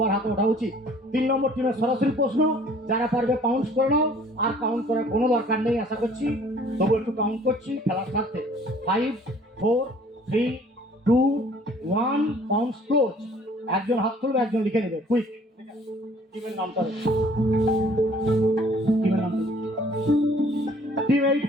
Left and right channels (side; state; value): both; normal; correlation 0.55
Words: হাতে ওঠা উচিত। 3 নম্বর টিমের সরাসরি প্রশ্ন, যারা পারবে কাউন্ট করে নাও। আর কাউন্ট করার কোনো দরকার নেই আশা করছি, তবু একটু কাউন্ট করছি খেলার স্বার্থে। 5, 4, 3, 2, 1, কাউন্টস ক্লোজ। একজন হাত তুলবে, একজন লিখে নেবে, কুইক। টিমের নামটা টিম